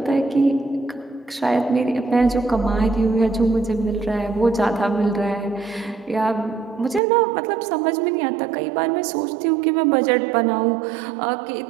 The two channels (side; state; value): left; drops out; at 7.0 s